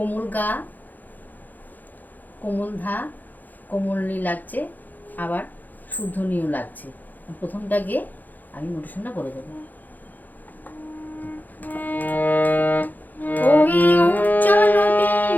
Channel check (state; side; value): late; right; 0.084 ms